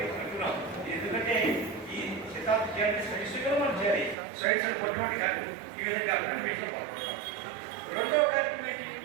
అంటున్నాం. ఎందుకంటే ఈ శతాబ్ది సైన్స్గా మనం చేయాలి. సైన్స్ కొట్టుబడి కాదు. ఈ విధంగా గణేష్లో పాల్గొంటాం. రెండవ కార్యక్రమం ఏంటి?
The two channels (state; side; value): drops out; left; at 4.2 s